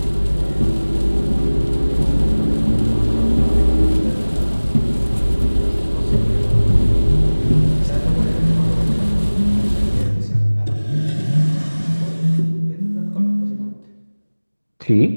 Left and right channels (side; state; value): both; inverted; correlation -1.00